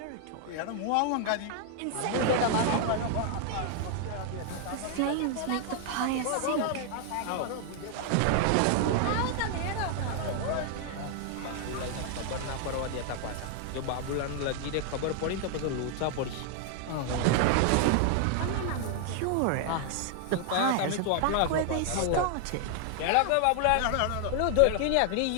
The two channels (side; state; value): both; different; correlation 0.00